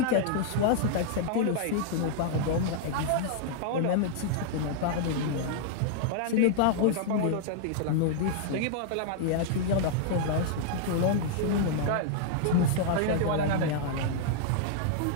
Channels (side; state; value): both; different; correlation -0.01